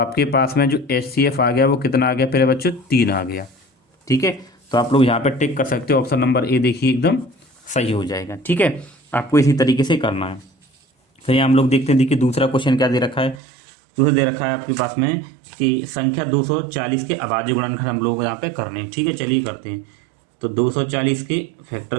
पास में जो HCF आ गया वो कितना आ गया प्यारे बच्चों, 3 आ गया। ठीक है, तो आप लोग यहाँ पे टिक कर सकते हो। ऑप्शन नंबर ए देखिए एकदम सही हो जाएगा। ठीक है, आपको इसी तरीके से करना है। फिर यहाँ हम लोग देखते हैं, देखिए दूसरा क्वेश्चन क्या दे रखा है। दूसरा दे रखा है आपके पास में कि संख्या 240 के अभाज्य गुणनखंड हम लोग यहाँ पे करने हैं। ठीक है, चलिए करते हैं। तो 240 के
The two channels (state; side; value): drops out; left; at 13.4 s